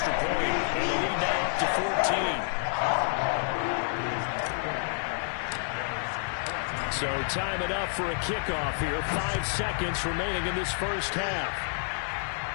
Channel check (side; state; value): right; silent; 59 dB below the other